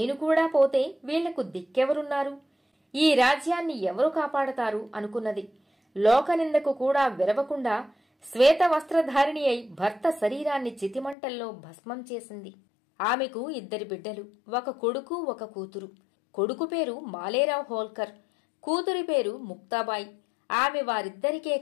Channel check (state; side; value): drops out; right; at 11.2 s